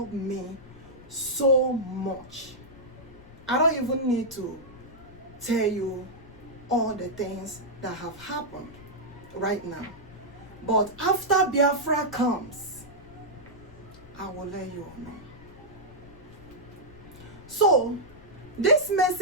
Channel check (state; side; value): noise; left; rumble, 19 dB below the sound